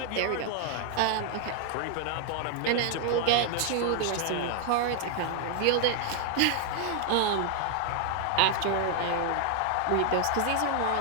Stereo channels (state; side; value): different; both; correlation 0.00